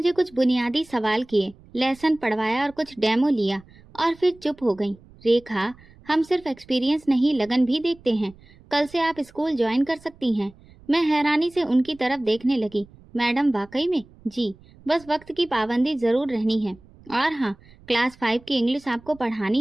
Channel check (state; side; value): noise; right; rumble, 25 dB below the sound